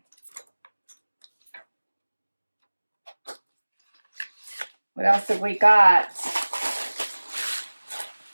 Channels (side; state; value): both; inverted; correlation -1.00